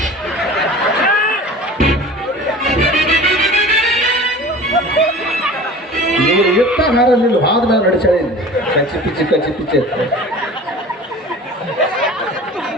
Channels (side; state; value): both; normal; correlation 0.39